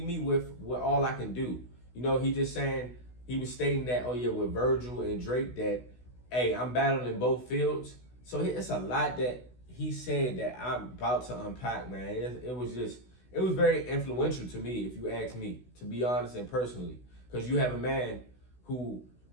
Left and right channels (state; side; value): late; right; 16 ms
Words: me with all I can do. You know, he was stating that, oh yeah, with Verzuz and Drake that, hey, I'm battling in both fields. So it's a lot that he said that I'm about to unpack, man, it was very influential to me, if you ask me, to be honest and personally. Because you have a man who